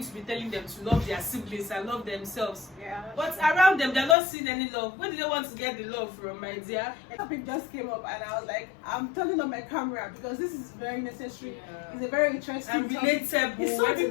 to be telling them to love their siblings and love themselves. yeah. But around them, they're not seeing any love. Where do they want to get the love from, my dear? A topic just came up and I was like, I'm turning on my camera because this is very necessary. Yeah. It's a very interesting And topic. relatable. It's something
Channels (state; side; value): drops out; right; at 4.2 s